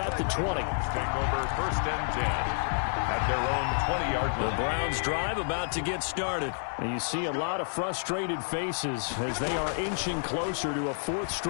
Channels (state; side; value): silent; right; digital silence